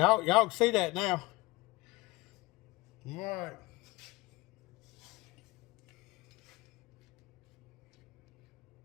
can see that now. All right.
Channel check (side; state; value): right; quieter; 21.3 dB